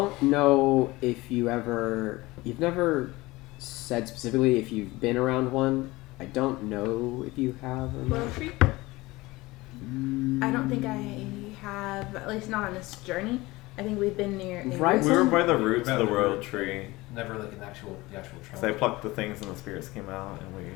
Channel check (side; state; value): right; quieter; 20.7 dB